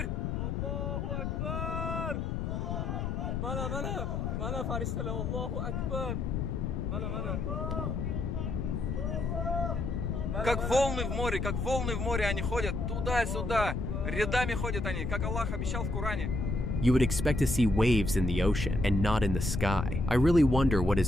Аллаху Акбар! Мана фаристала, Аллаху Акбар! Мана. Как волны в море они ходят туда-сюда, рядами ходят они, как Аллах обещал в Коране. You would expect to see waves in the ocean and not in the sky. I really wonder what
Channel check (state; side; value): noise; left; rumble, 1 dB below the sound